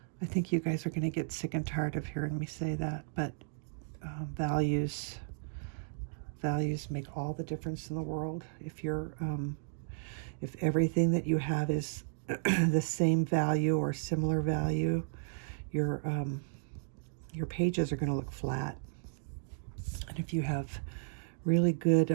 I think you guys are going to get sick and tired of hearing me say that, but values make all the difference in the world. If you're if everything that you have is the same value or similar value, your pages are going to look flat. And if you have really good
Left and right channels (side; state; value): left; silent; digital silence